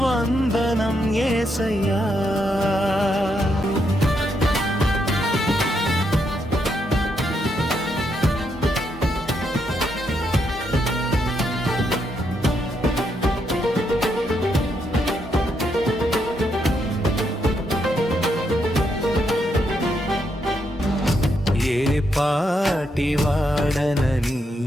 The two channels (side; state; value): both; normal; correlation 0.78